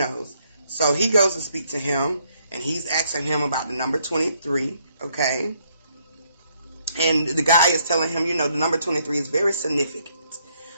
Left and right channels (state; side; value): inverted; both; correlation -0.72